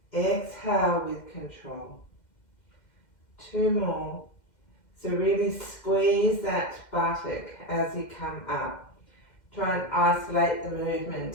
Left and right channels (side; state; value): right; late; 2.1 ms